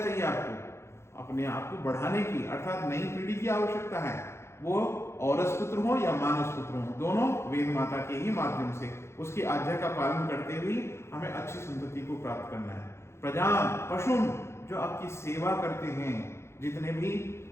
आपको? अपने आप को बढ़ाने की, अर्थात नई पीढ़ी की आवश्यकता है। वो औरस पुत्र हो या मानस पुत्र हो, दोनों वेद माता के ही माध्यम से उसकी आज्ञा का पालन करते हुए हमें अच्छी संतति को प्राप्त करना है। प्रजाम, पशुन, जो आपकी सेवा करते हैं, जितने भी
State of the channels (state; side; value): late; right; 0.13 ms